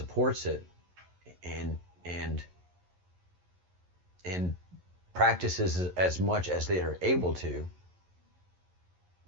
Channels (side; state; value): left; late; 11 ms